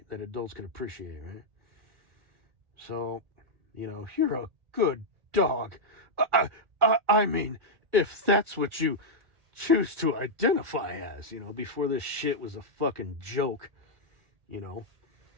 That adults could appreciate, right? So, you know, you're a good dog. I mean, if that's what you choose to identify as, you know, before this shit was a fucking joke, you know.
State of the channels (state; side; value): late; left; 1.4 ms